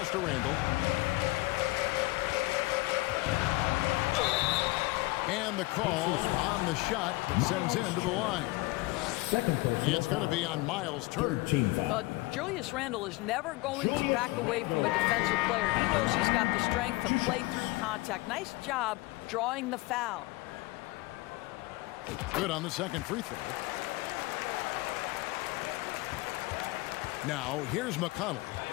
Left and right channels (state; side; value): quieter; right; 21.8 dB